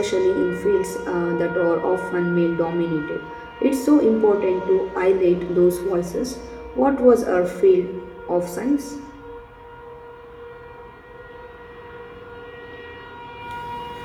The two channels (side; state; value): both; identical; correlation 1.00